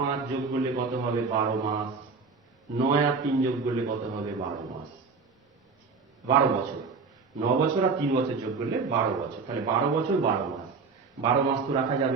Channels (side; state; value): left; quieter; 4.7 dB